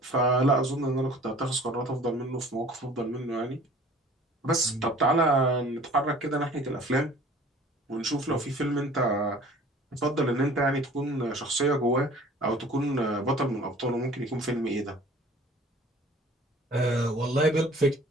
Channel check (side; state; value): both; normal; correlation 0.49